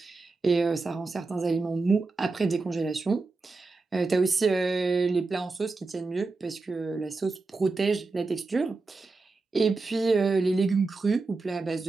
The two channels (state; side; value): quieter; left; 3.8 dB